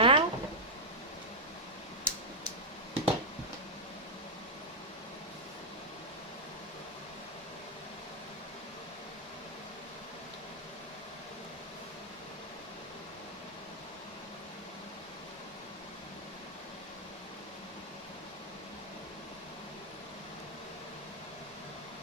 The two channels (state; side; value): normal; both; correlation -0.05